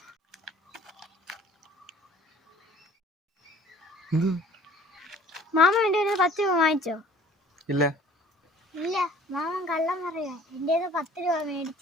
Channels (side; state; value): both; normal; correlation 0.52